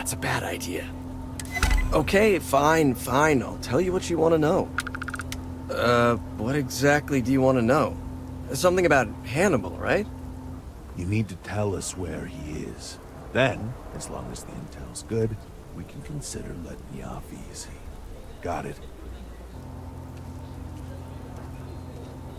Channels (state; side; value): identical; both; correlation 1.00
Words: a bad idea. Okay, fine. I'll tell you what you want to know. What exactly do you want to know? Something about Hannibal, right? You need to tell us where he is. Then, as long as the intel's good, we can consider letting you off easy. Got it?